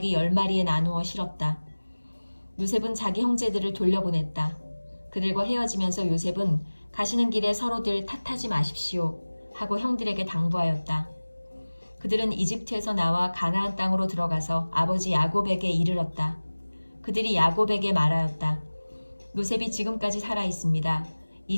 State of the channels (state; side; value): inverted; both; correlation -1.00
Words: 10마리에 나누어 실었다. 요셉은 자기 형제들을 돌려보냈다. 그들과 헤어지면서 요셉은 가시는 길에 서로들 탓하지 마십시오 하고 형들에게 당부하였다. 그들은 이집트에서 나와 가나안 땅으로 들어가서 아버지 야곱에게 이르렀다. 그들이 야곱에게 말하였다. 요셉이 지금까지 살아 있습니다.